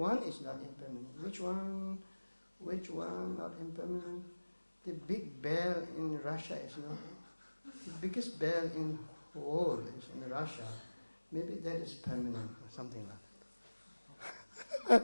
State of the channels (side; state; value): both; inverted; correlation -1.00